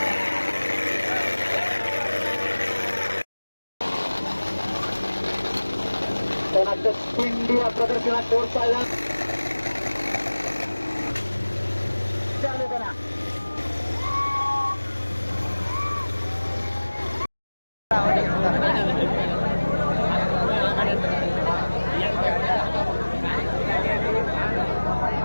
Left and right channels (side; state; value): both; inverted; correlation -1.00